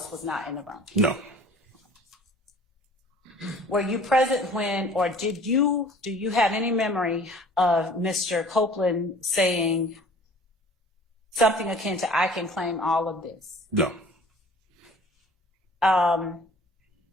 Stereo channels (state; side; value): normal; both; correlation 0.49